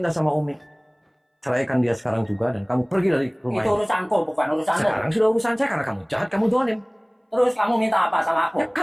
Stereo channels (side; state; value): both; identical; correlation 1.00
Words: sama Umi, ceraikan dia sekarang juga dan kamu pergi dari rumah Itu ini. urusanku, bukan urusanmu. Sekarang sudah urusan saya karena kamu jahat, kamu dolim. Terus kamu minta apa sama aku? Ya